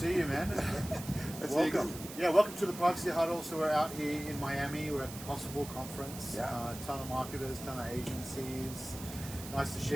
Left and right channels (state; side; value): noise; right; hiss, 12 dB below the sound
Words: you, man. Welcome. Yeah, welcome to the Privacy Huddle. So we're out here in Miami. We're at the Possible Conference. Yeah. Ton of marketers, ton of agencies. Nice to